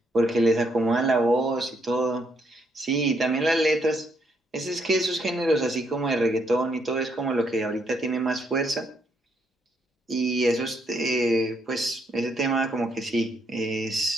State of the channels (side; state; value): both; normal; correlation 0.74